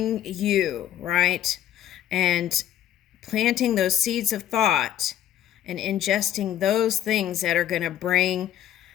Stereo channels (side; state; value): right; quieter; 11.5 dB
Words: you, right? And planting those seeds of thought and ingesting those things that are going to bring,